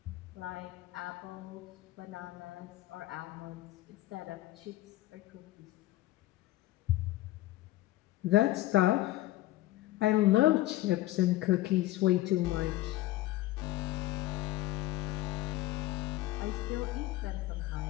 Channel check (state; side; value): quieter; right; 16.3 dB